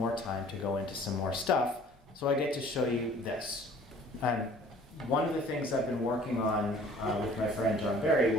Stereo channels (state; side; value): normal; both; correlation 0.51